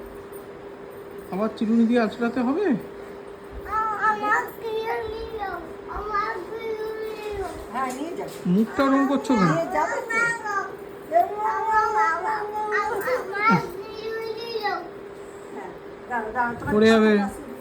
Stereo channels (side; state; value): both; identical; correlation 1.00